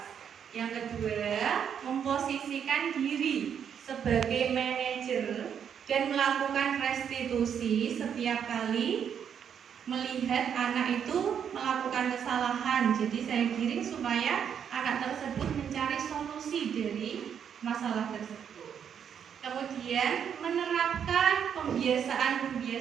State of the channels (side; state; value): left; quieter; 8.1 dB